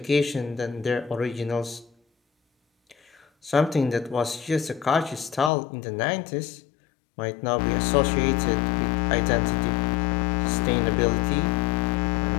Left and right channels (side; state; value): right; drops out; at 5.5 s